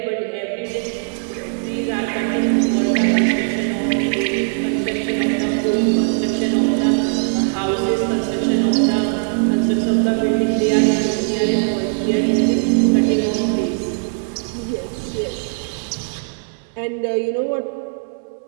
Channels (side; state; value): left; silent; 66 dB below the other